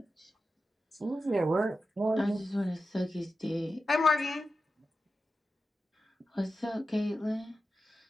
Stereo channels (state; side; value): normal; both; correlation 0.92